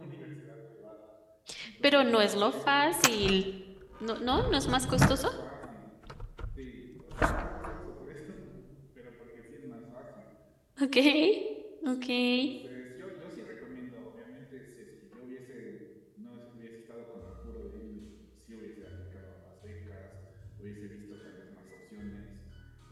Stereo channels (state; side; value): identical; both; correlation 1.00